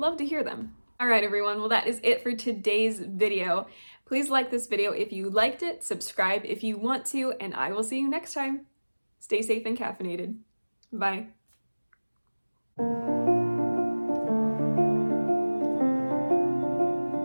to hear them. All right, everyone, well, that is it for today's video. Please like this video if you liked it, subscribe if you want to, and I will see you next time. Stay safe and caffeinated. Bye.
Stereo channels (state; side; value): inverted; both; correlation -1.00